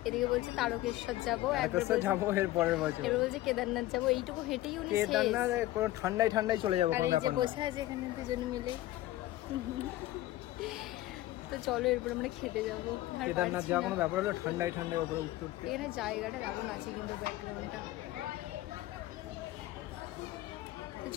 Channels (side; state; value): right; quieter; 16.2 dB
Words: বলছে তারকেশ্বর যাবো, যাবো এর পরের বছর, এবার বলছে কেদারনাথ যাবো। এইটুকু হেঁটেই উনি শেষ। কেদারনাথ পুরো ঠান্ডায় চলে যাবো। আর এই যে বসে আছে এখানে দুজন মিলে। তো চলো এরপর আমরা খেতে যাবো। কেদারনাথ যাওয়া কোনো ব্যাপার হলো? ঠান্ডায় উপরে উঠতে উঠতে। এখানে জায়গাটা দারুণ আছে কিন্তু ব্যাকগ্রাউন্ডটা।